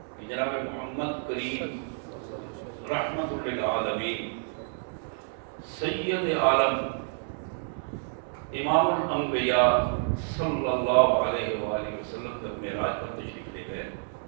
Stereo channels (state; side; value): silent; left; digital silence